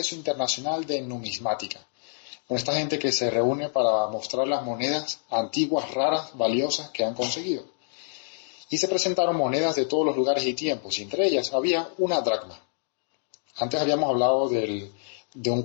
Internacional de Numismática, con esta gente que se reúne para mostrar las monedas antiguas, raras, valiosas que han conseguido. Y se presentaron monedas de todos los lugares y tiempos, y entre ellas había una dracma. Antes habíamos hablado de un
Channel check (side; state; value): right; silent; digital silence